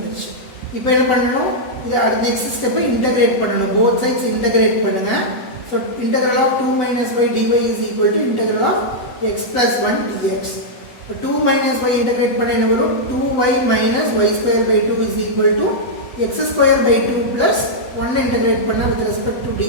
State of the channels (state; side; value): late; right; 7.9 ms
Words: இப்போ என்ன பண்ணணும், இது அடுத்த நெக்ஸ்ட் ஸ்டெப்பை இன்டகிரேட் பண்ணணும். போத் சைட்ஸ் இன்டகிரேட் பண்ணுங்க. So integral of 2 minus y dy is equal to integral of x plus 1 dx. இப்போ 2 minus y இன்டகிரேட் பண்ண என்ன வரும், 2y minus y square by 2 is equal to x square by 2 plus 1 integrate பண்ண with respect to